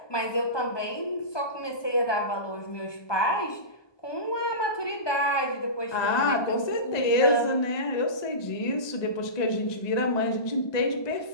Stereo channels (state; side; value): late; right; 1.2 ms